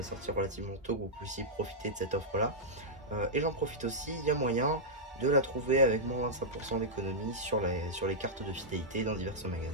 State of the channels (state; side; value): normal; both; correlation -0.09